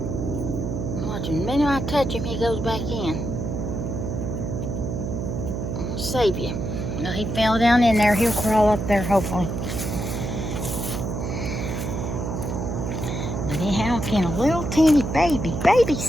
Watch him. The minute I touch him, he goes back in. I'm gonna save you. Now he fell down in there. He'll crawl up there, hopefully. But anyhow, can a little teeny baby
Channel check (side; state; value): right; noise; hum, 3 dB below the sound